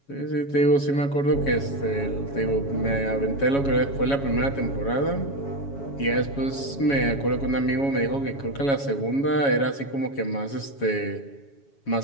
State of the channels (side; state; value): right; late; 7.2 ms